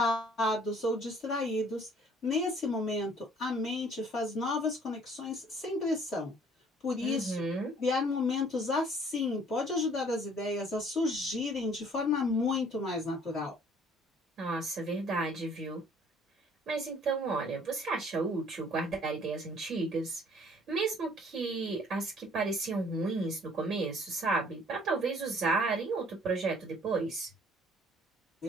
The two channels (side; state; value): both; normal; correlation 0.57